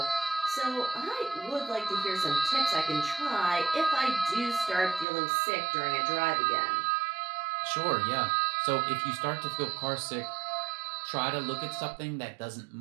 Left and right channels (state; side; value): drops out; left; at 5.1 s